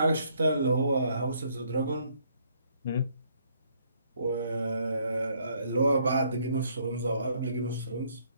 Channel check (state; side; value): inverted; both; correlation -0.67